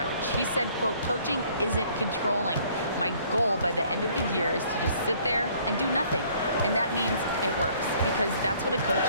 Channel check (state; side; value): inverted; both; correlation -0.60